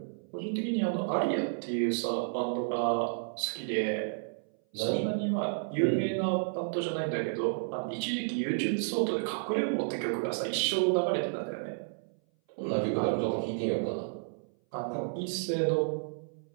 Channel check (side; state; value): left; silent; 57 dB below the other